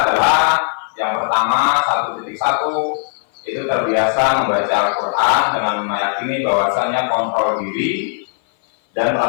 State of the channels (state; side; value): silent; right; 59 dB below the other